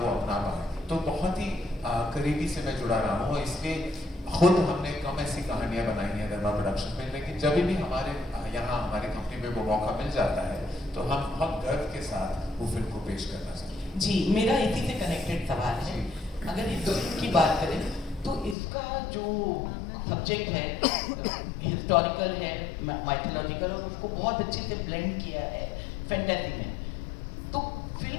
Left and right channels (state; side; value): drops out; right; at 18.6 s